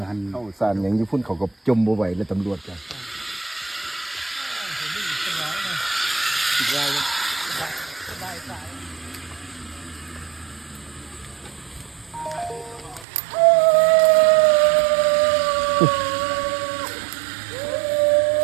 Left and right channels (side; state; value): left; drops out; at 13.1 s